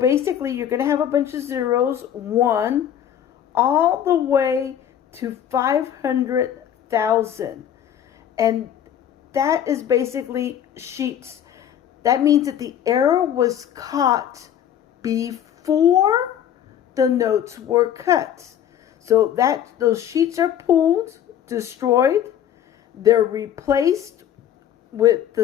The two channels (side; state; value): right; quieter; 10.0 dB